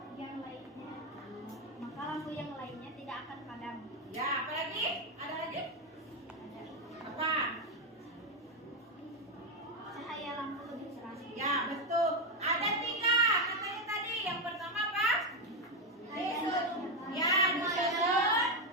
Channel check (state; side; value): normal; both; correlation 0.07